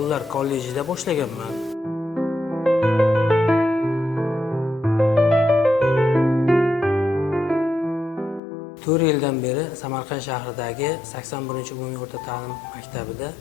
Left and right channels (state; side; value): drops out; right; at 8.4 s